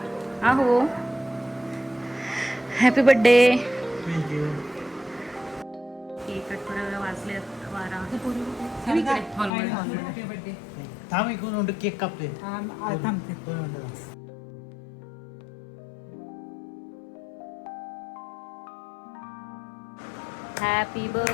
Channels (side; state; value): right; drops out; at 9.5 s